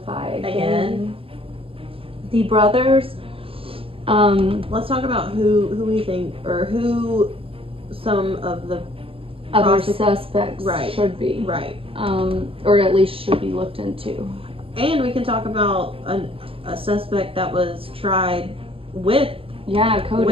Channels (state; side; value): late; left; 0.27 ms